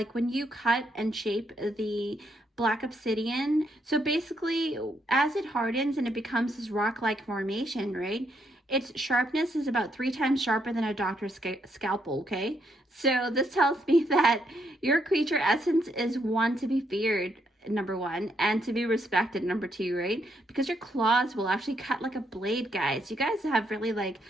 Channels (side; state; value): both; normal; correlation 0.76